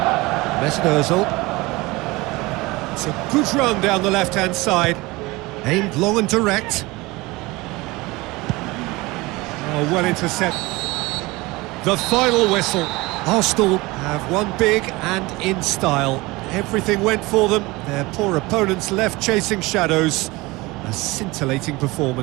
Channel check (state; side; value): quieter; left; 22.1 dB